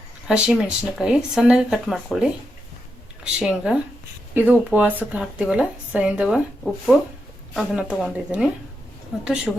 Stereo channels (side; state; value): both; normal; correlation 0.85